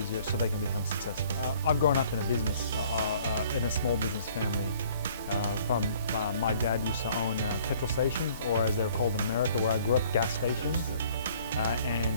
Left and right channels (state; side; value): inverted; both; correlation -0.56